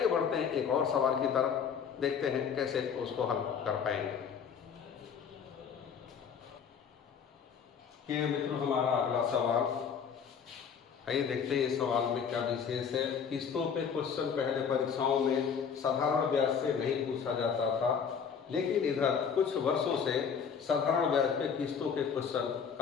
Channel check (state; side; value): quieter; right; 6.9 dB